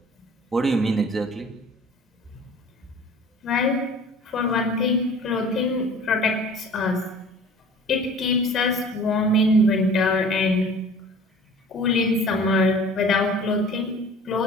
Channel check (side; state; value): both; normal; correlation 0.46